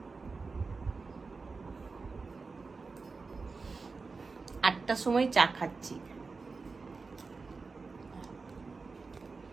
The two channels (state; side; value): quieter; left; 4.3 dB